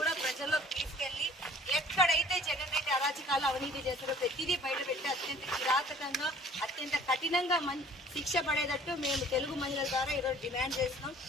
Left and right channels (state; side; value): normal; both; correlation 0.51